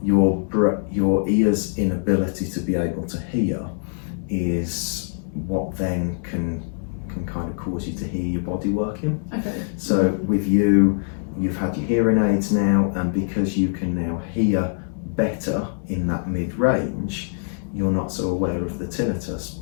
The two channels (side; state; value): right; silent; 63 dB below the other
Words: your ear's inability to be able to hear is what then can kind of cause you to hear your body working. Okay. So with you've had your hearing aids now, and because you can now hear better in that mid-range, you're not so aware of the tinnitus